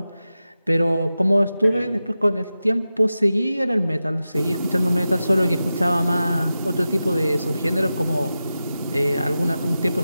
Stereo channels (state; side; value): inverted; both; correlation -0.93